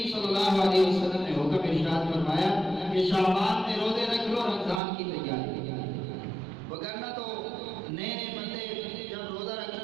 صلی اللہ علیہ وسلم نے حکم ارشاد فرمایا کہ شعبان میں روزے رکھ لو، رمضان کی تیاری۔ وگرنہ تو نئے نئے بندے جب روزہ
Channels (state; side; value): drops out; left; at 4.8 s